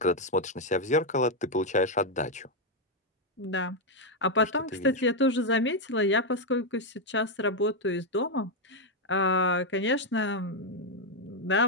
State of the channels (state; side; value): normal; both; correlation 0.02